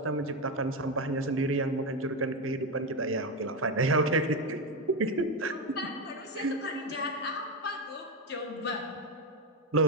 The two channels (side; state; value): both; normal; correlation 0.10